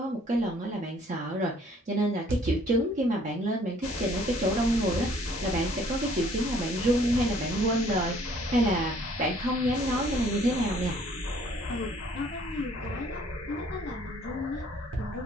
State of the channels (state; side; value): normal; both; correlation 0.59